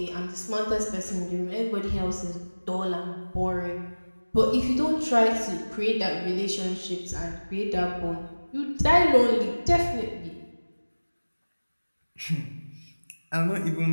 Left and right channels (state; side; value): inverted; both; correlation -1.00